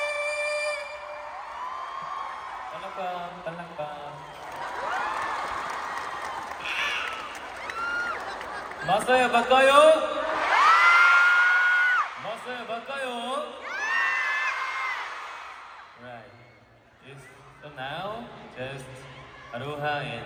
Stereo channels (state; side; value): identical; both; correlation 1.00